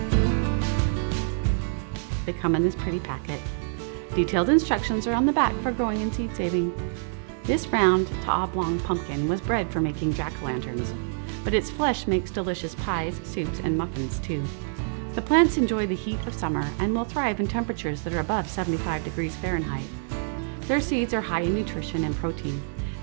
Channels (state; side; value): silent; left; digital silence